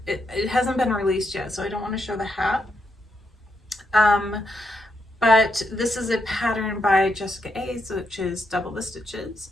hasn't been released yet, so I don't want to show the hat. But this is a pattern by Jessica A's, which is Double the Stitches,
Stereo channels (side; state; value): both; normal; correlation 0.81